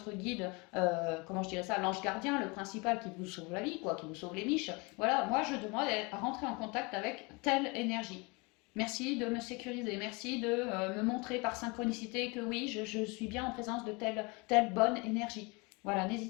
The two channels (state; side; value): quieter; right; 27.9 dB